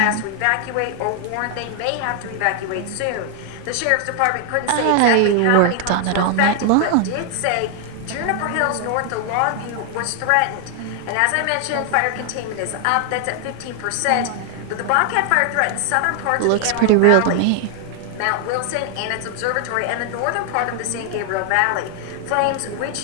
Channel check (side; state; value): both; different; correlation 0.00